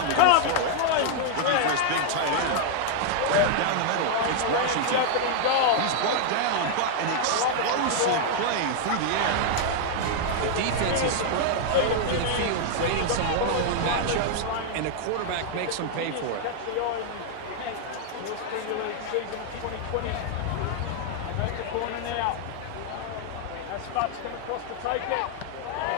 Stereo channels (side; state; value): both; different; correlation 0.00